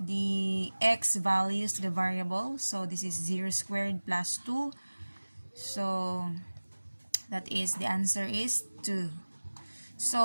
x values to the variable. So, this is 0 squared plus 2. So, that is, the answer is 2.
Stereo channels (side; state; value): both; inverted; correlation -1.00